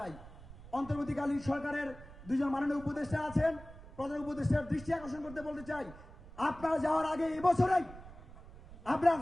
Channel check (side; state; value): right; noise; rumble, 17 dB below the sound